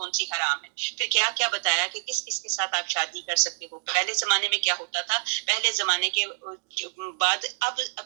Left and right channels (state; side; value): silent; left; digital silence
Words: سی حرام ہیں۔ پھر کیا کیا بتایا کہ کس کس کے ساتھ آپ شادی کر سکتے ہو۔ پہلے زمانے میں کیا ہوتا تھا، پہلے زمانے کے بعد اب